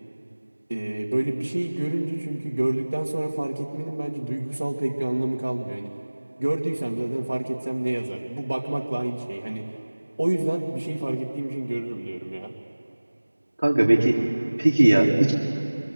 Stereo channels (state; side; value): inverted; both; correlation -1.00